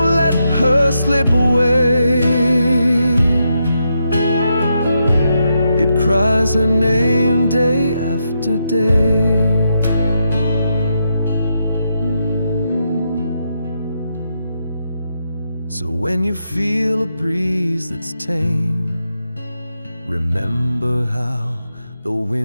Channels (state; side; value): inverted; both; correlation -0.83